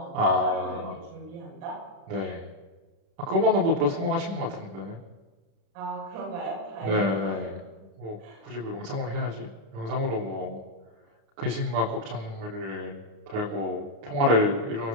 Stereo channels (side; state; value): left; late; 36 ms